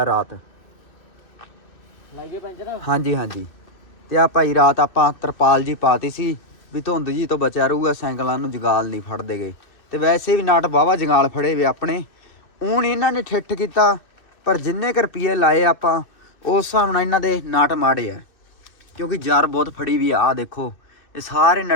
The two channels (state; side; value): late; right; 2.6 ms